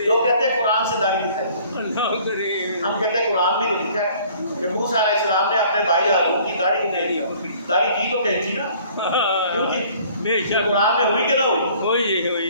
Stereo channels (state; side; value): inverted; both; correlation -0.54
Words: لوگ کہتے ہیں قرآن سے داڑھی دکھائی، اللہ کریم. ہم کہتے ہیں قرآن بھی تو لکھا ہے کہ موسیٰ علیہ السلام نے اپنے بھائی ہارون کی داڑھی کو دے دیا. داڑھی کی تو کینچی نا، کیوں جی؟ بے شک قرآن میں ہوئی کہ نہ ہوئی؟